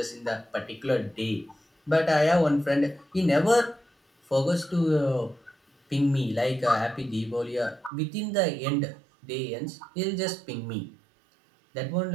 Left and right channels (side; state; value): left; drops out; at 7.9 s